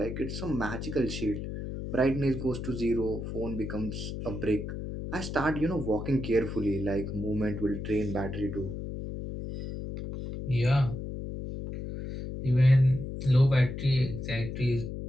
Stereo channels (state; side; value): noise; left; hum, 6 dB below the sound